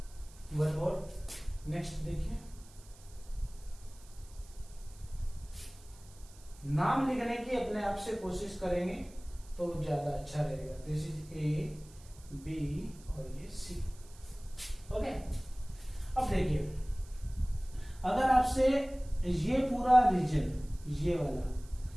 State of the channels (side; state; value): right; noise; hiss, 23 dB below the sound